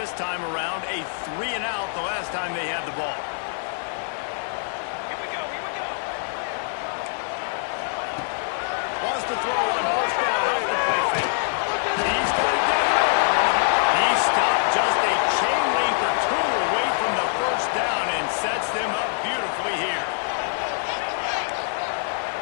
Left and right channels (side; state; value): right; silent; digital silence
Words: time around. A 3-and-out the last time they had the ball. Wants to throw on first down off the play fake. He's got it down. He stopped just a chain link or two away from the first down and sets them up beautifully here.